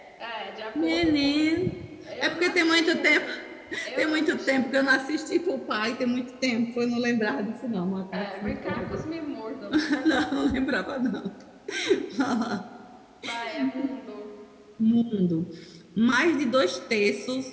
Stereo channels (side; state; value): both; identical; correlation 1.00